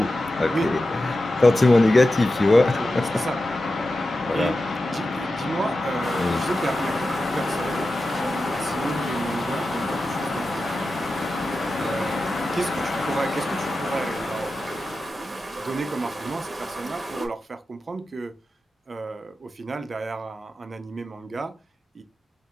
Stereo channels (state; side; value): normal; both; correlation 0.92